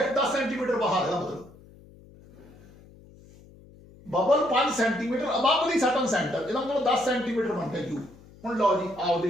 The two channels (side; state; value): left; noise; hum, 23 dB below the sound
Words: 10 सेंटीमीटर बाहर है, मतलब बबल 5 सेंटीमीटर अबव दी सर्टन सेंटर, इसका मतलब 10 सेंटीमीटर बन गया u। हुण लो जी आओ